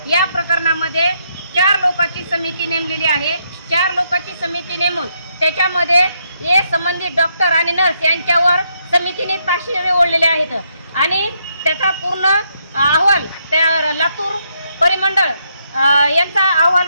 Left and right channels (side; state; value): both; inverted; correlation -0.76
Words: या प्रकरणामध्ये 4 लोकांची समिती नेमलेली आहे. 4 लोकांची समिती नेमून त्याच्यामध्ये हे संबंधित डॉक्टर आणि नर्स यांच्यावर समितीने ताशेरे ओढलेले आहेत. आणि त्याचा पूर्ण अहवाल त्या लातूर परिमंडळ यांचा अहवाल